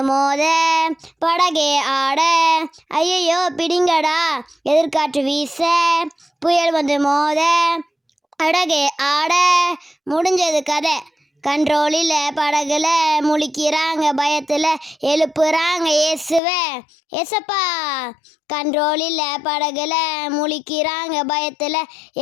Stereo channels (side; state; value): right; drops out; at 16.4 s